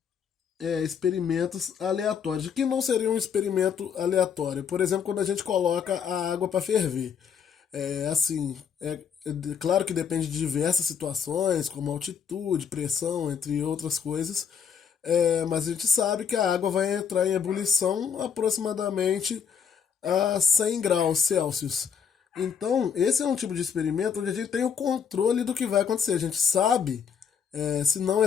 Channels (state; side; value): quieter; right; 7.1 dB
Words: experimentos aleatórios. O que não seria um experimento aleatório? Por exemplo, quando a gente coloca a água para ferver. Assim, claro que depende de diversas situações, como altitude, pressão, entre outras coisas. Mas a gente sabe que a água vai entrar em ebulição aproximadamente a 100 graus Celsius. Então, esse é um tipo de experimento onde a gente tem o controle do que vai acontecer. A gente sabe, se não